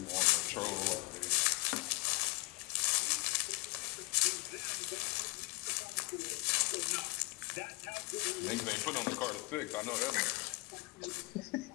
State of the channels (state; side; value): quieter; right; 24.5 dB